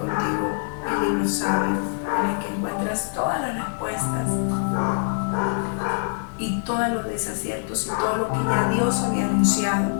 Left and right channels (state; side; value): silent; right; 62 dB below the other